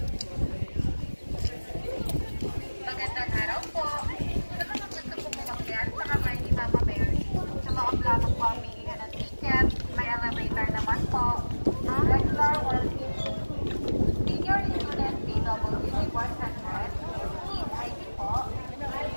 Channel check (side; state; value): both; inverted; correlation -1.00